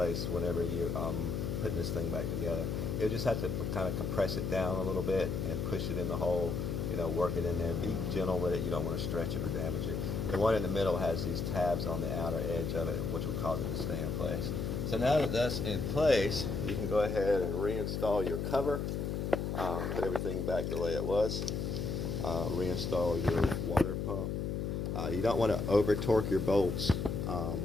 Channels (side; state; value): left; noise; hum, 1 dB below the sound